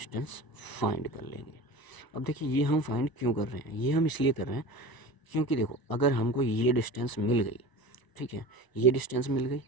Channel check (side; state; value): right; late; 1.0 ms